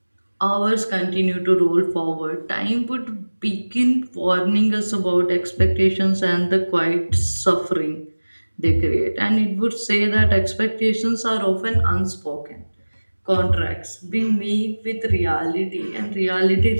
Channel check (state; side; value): inverted; both; correlation -1.00